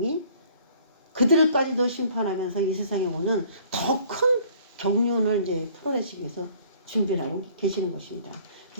그들까지도 심판하면서 이 세상에 오는 더 큰 경륜을 이제 풀어내시기 위해서 준비를 하고 계시는 것입니다.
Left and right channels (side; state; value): both; inverted; correlation -0.55